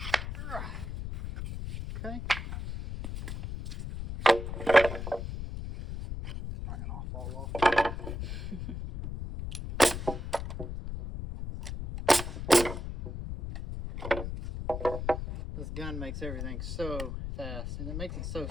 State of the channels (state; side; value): noise; left; rumble, 6 dB below the sound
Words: Okay. Bringing off all off. This gun makes everything so fast, and it makes it so